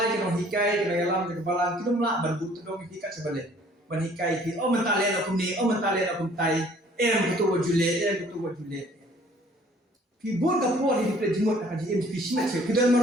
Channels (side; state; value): both; normal; correlation 0.56